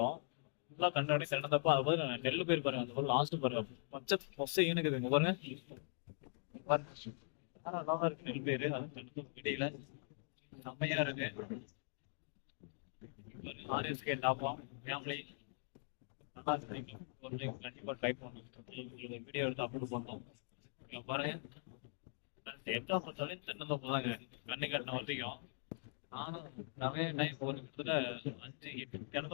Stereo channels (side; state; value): right; silent; digital silence